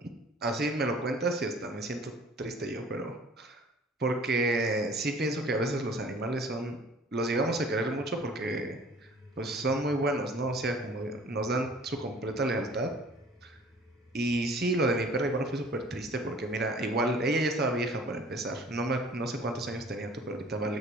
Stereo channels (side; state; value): both; normal; correlation 0.50